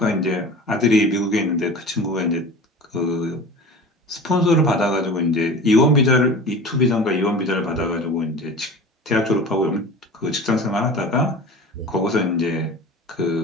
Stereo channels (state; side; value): normal; both; correlation 0.37